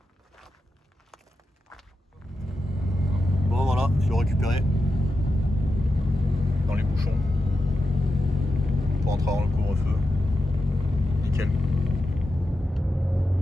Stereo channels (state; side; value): normal; both; correlation 0.89